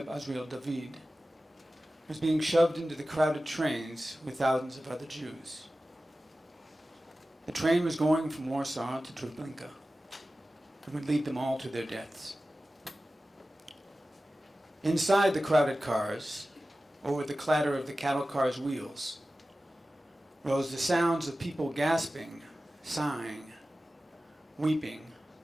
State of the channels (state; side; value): normal; both; correlation 0.95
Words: Azriel David was being shoved into the crowded trains with thousands of other Jews. The train was going from Warsaw to Treblinka and would lead them all to their deaths. Inside the crowded cars, or with the clatter of the cattle cars' wheels, rose the sounds of people gasping, sighing, weeping,